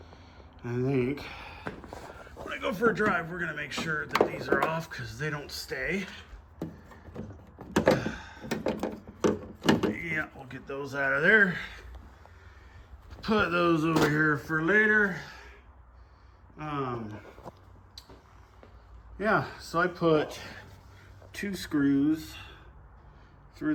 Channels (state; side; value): identical; both; correlation 1.00